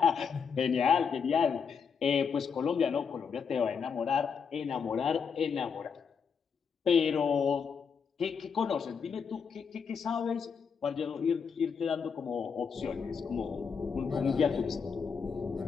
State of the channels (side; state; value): right; quieter; 6.2 dB